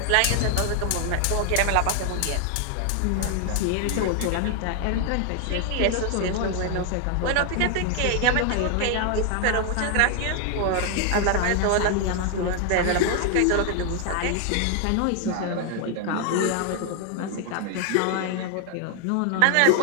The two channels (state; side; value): different; both; correlation 0.00